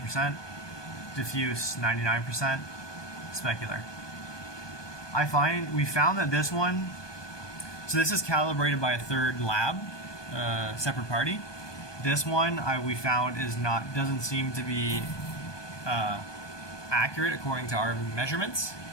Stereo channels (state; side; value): late; right; 1.2 ms